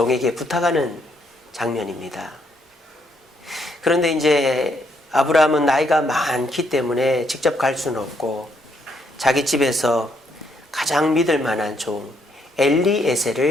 부탁하는 장면입니다. 그런데 이제 아브라함은 나이가 많기 때문에 직접 갈 수는 없고 자기 집에서 가장 믿을 만한 종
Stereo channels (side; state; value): both; normal; correlation 0.73